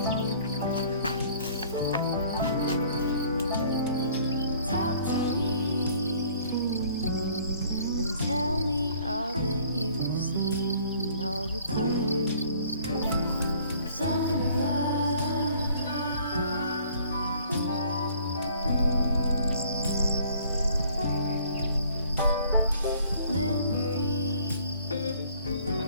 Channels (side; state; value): both; inverted; correlation -0.56